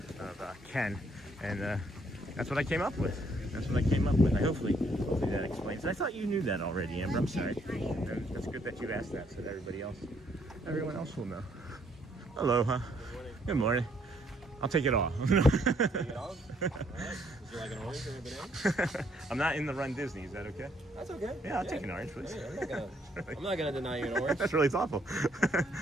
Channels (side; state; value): both; normal; correlation 0.68